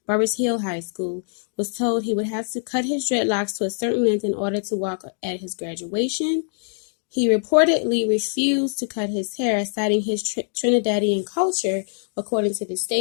High School, was told he would have to cut his dreadlocks to a certain length in order to walk at his graduation. He reportedly refused to cut his hair, citing his Trinidadian culture, according to the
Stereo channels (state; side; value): silent; right; 63 dB below the other